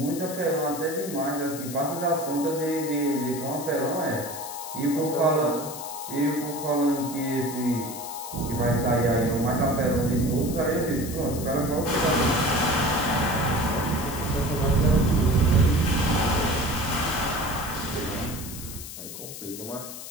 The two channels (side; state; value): left; noise; hiss, 11 dB below the sound